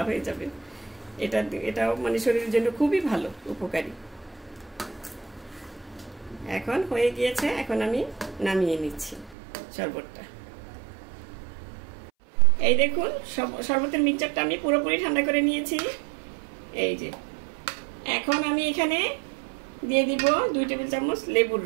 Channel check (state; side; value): drops out; left; at 9.3 s